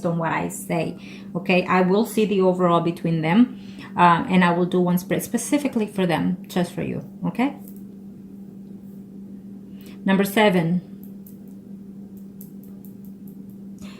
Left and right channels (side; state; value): both; identical; correlation 1.00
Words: on what I say. Okay, I will see the overall between them, and I will do one spread specifically for them, just for you. Okay. Number 7.